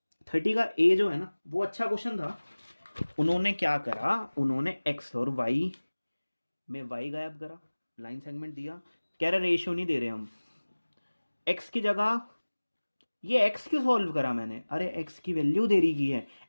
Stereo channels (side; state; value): both; inverted; correlation -1.00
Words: 30 का ए जो है ना वो अच्छा क्वेश्चन था। उन्होंने क्या करा, उन्होंने एक्स और वाई में वाई गायब करा, लाइन सेगमेंट दिया, कह रहे रेशियो नहीं दे रहे हम, एक्स की जगह ये एक्स क्यों सॉल्व करा मैंने, अरे एक्स की वैल्यू दे रही की है,